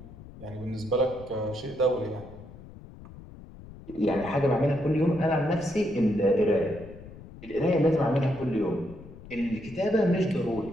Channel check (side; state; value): left; noise; rumble, 17 dB below the sound